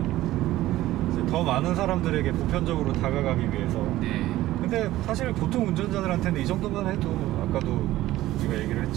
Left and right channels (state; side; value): quieter; left; 15.6 dB